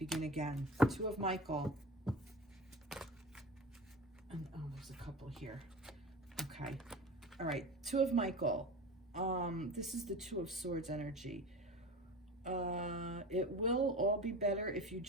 again. 2 of Michael. And oh, there's a couple here. Okay. All right. 2 of Michael. This is the 2 of Swords energy. It will all be better if you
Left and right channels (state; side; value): normal; both; correlation 0.33